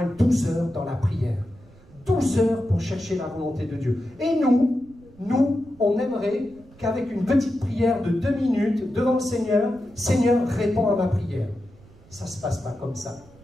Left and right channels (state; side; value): noise; right; rumble, 25 dB below the sound